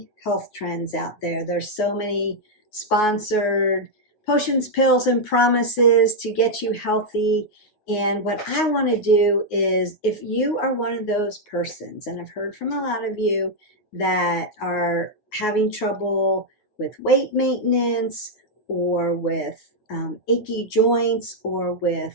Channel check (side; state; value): right; late; 9.4 ms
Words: health trends out there. There's so many sponsored potions, pills, and promises to get you healthy. And what I want to do is, if you are one of those persons, and I've heard from a lot of you that are having trouble with weight maintenance or with achy joints or